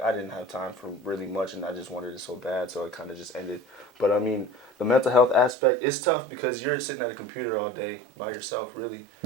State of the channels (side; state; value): left; drops out; at 5.6 s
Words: I didn't have time for really much, and I just wanted it so bad, so it kind of just ended. But I mean, the mental health aspect, it's tough because you're sitting at a computer all day by yourself, really.